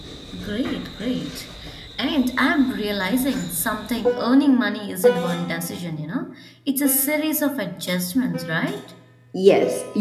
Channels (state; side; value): identical; both; correlation 1.00